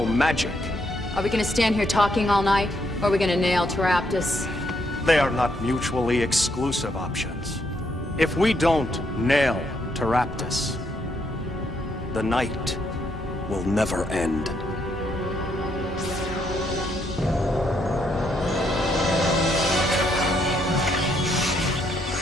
magic. Are we gonna stand here talking all night, or are we gonna nail Taraptus? They are not mutually exclusive options. If we don't nail Taraptus, the night will never end.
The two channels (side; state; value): both; normal; correlation 0.75